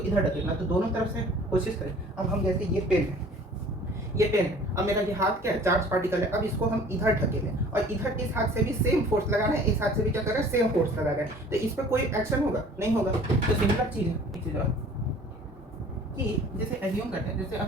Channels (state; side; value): normal; both; correlation 0.49